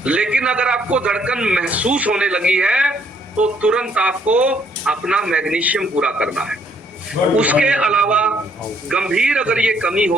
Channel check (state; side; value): normal; both; correlation 0.68